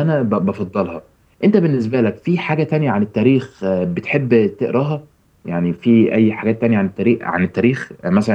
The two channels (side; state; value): both; identical; correlation 1.00